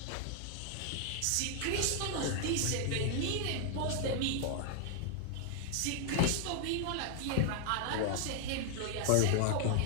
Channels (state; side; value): different; both; correlation 0.00